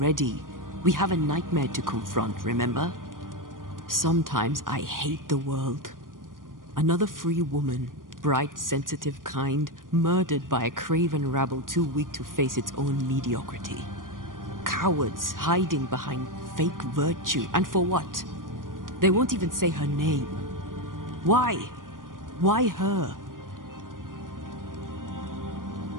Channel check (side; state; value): left; late; 0.90 ms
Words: We have a nightmare to confront, remember? Sometimes I hate the world. Another free woman, bright, sensitive, kind, murdered by a craven rabble too weak to face its own mediocrity. Cowards hiding behind fake virtue, and for what? They won't even say her name. Why? Why her?